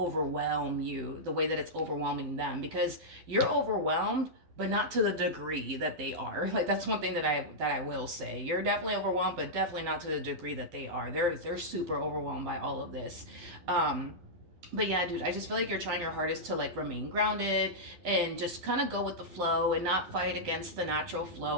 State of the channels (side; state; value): left; late; 12 ms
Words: you the way that it's overwhelming them, because you're overwhelmed, but not to the degree that they are. Like, that's one thing that I will say. You're definitely overwhelmed, but definitely not to the degree that they are. They're super overwhelmed by all of this. But yeah, dude, I just feel like you're trying your hardest to like remain grounded and just kind of go with the flow and not fight against the natural